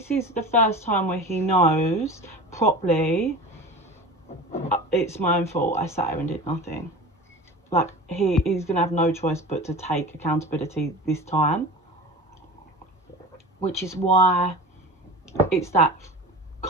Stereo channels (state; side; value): normal; both; correlation 0.35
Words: is the first time where he knows properly, it's my own fault, I sat here and did nothing. Like, he's going to have no choice but to take accountability this time. Which is why it's that